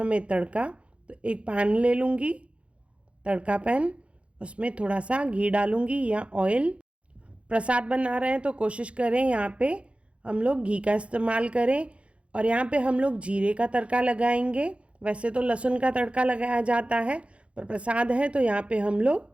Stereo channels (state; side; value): late; left; 0.061 ms